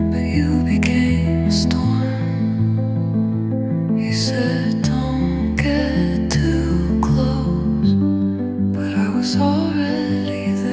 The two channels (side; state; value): both; identical; correlation 1.00